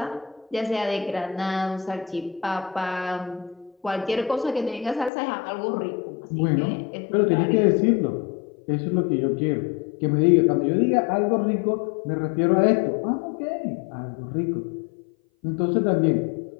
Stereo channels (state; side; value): drops out; right; at 5.1 s